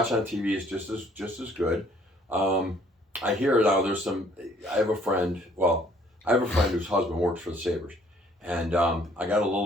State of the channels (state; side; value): normal; both; correlation 0.61